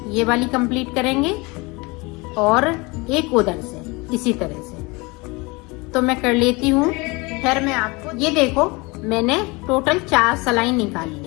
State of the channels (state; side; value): quieter; right; 25.9 dB